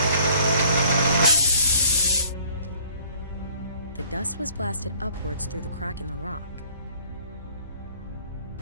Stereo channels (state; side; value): inverted; both; correlation -0.55